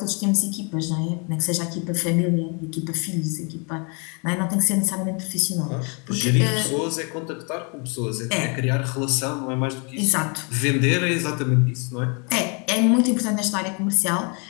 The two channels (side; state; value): right; quieter; 34.5 dB